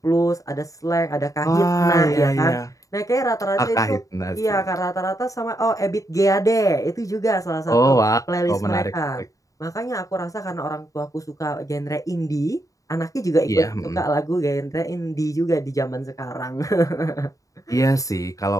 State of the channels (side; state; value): right; late; 0.16 ms